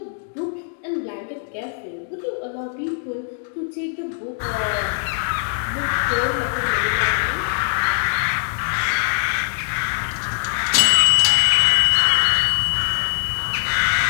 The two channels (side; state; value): right; silent; digital silence